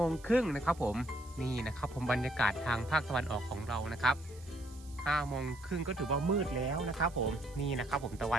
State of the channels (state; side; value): noise; right; hiss, 23 dB below the sound